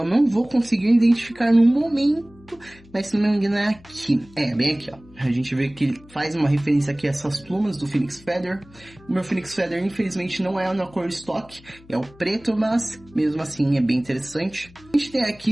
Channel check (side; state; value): left; noise; hum, 24 dB below the sound